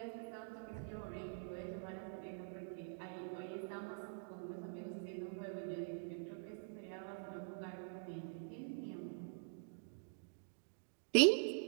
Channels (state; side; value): silent; left; digital silence